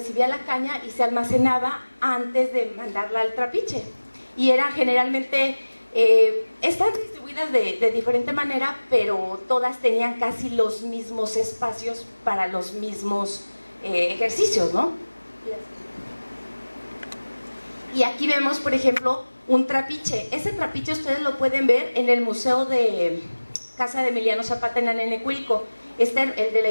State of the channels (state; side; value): inverted; both; correlation -1.00